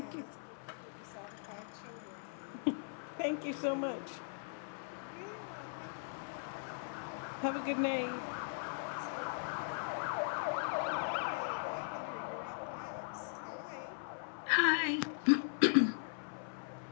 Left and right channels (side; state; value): right; silent; 52 dB below the other